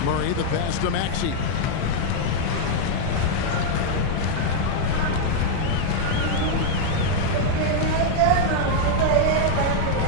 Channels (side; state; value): both; different; correlation 0.00